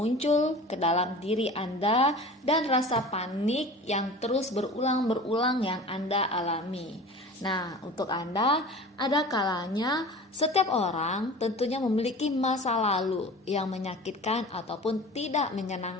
ke dalam diri Anda dan rasa panik yang terus berulang-berulang yang Anda alami. Nah, untuk Anda, ada kalanya setiap orang tentunya memiliki masa lalu yang menyakitkan ataupun tidak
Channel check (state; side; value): normal; both; correlation 0.38